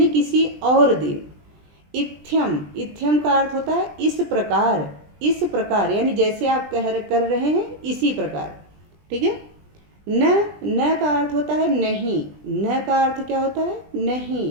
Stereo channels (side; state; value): left; late; 20 ms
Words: किसी और दिन। इत्थ्यम। इत्थ्यम का अर्थ होता है इस प्रकार। इस प्रकार यानी जैसे आप कर रहे हैं इसी प्रकार, ठीक है। न। न का अर्थ होता है नहीं। न का अर्थ क्या होता है?